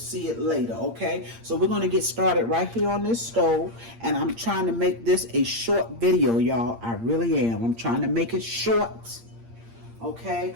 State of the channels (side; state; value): left; late; 8.7 ms